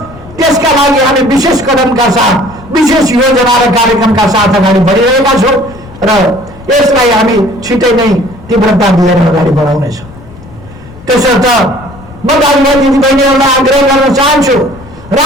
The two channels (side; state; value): left; noise; rumble, 19 dB below the sound